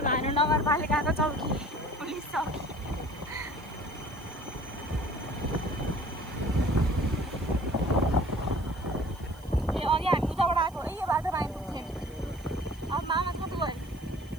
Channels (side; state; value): right; noise; hiss, 27 dB below the sound